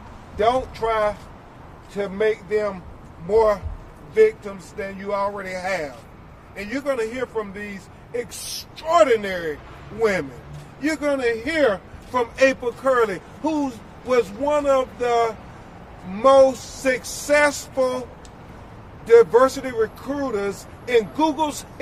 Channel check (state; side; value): identical; both; correlation 1.00